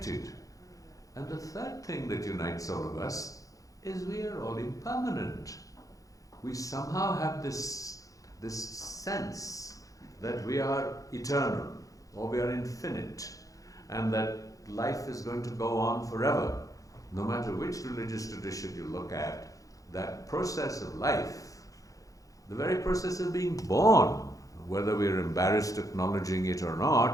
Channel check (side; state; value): right; late; 0.17 ms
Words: And the third thing that unites all of us is we are all impermanent. We somehow have this sense that we are eternal. or we are infinite, and that life is going to go on forever. No matter which religious tradition you look at, that process of life, the very process of being born, whether we're embarrassed acknowledging it or